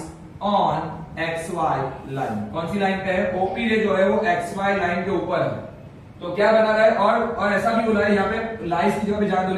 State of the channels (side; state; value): both; identical; correlation 1.00